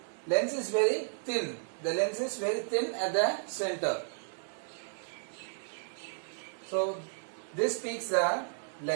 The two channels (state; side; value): silent; left; digital silence